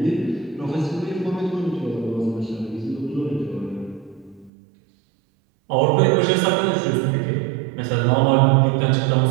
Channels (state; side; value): drops out; left; at 4.5 s